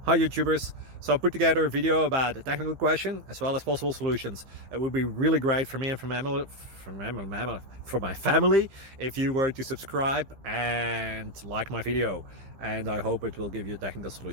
Hi YouTubers! So I put together a video about a technical question as well as possible solutions. It would be really great for me and for my family if you were to subscribe and like my video, and I hope it will give you a technical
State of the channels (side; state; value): left; late; 15 ms